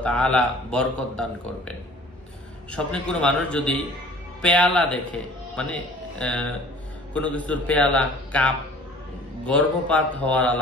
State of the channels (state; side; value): normal; both; correlation 0.48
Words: তাআলা বরকত দান করবেন। স্বপ্নে কোনো মানুষ যদি পেয়ালা দেখে, মানে কোনো কিছুর পেয়ালা, কাপ, গর্ভপাত হওয়ার